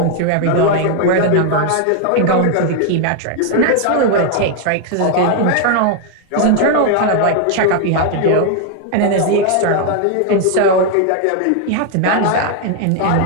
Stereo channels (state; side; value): different; both; correlation 0.00